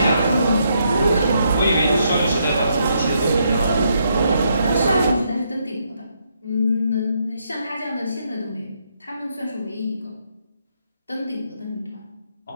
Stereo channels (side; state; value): both; inverted; correlation -0.76